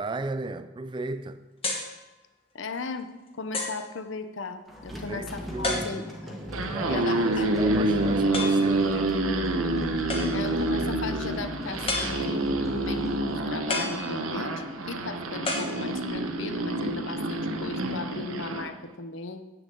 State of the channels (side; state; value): both; normal; correlation 0.36